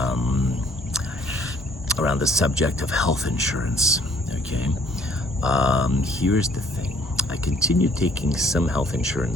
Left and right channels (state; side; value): normal; both; correlation 0.60